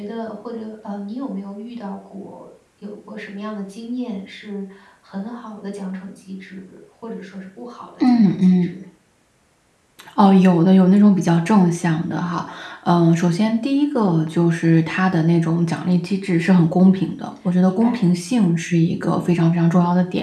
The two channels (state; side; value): identical; both; correlation 1.00